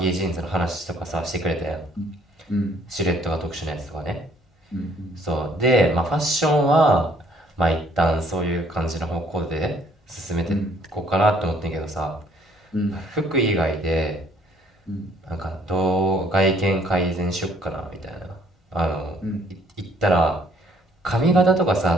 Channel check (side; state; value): both; normal; correlation 0.62